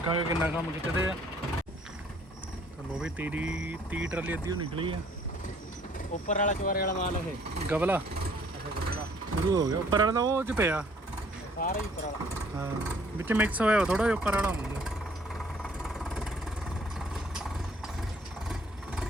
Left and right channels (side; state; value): both; normal; correlation 0.60